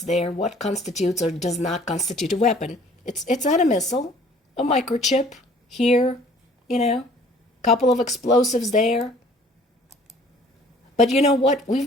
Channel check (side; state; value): both; normal; correlation 0.54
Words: there, what constitutes or does not constitute a weapon, it's not a missile, a microchip here, couple of explosives there. But you know what?